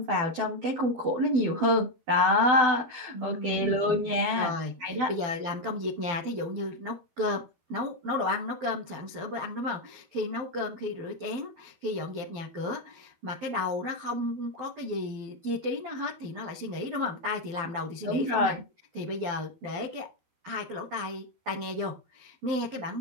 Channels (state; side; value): late; left; 12 ms